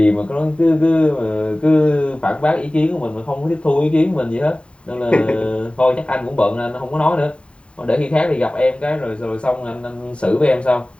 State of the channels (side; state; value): right; late; 0.056 ms